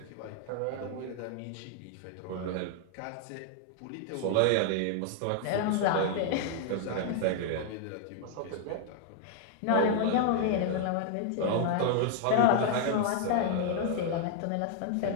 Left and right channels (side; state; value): both; different; correlation -0.01